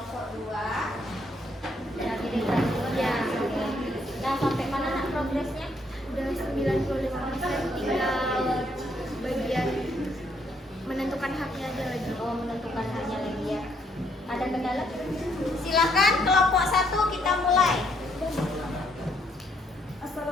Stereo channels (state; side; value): normal; both; correlation 0.71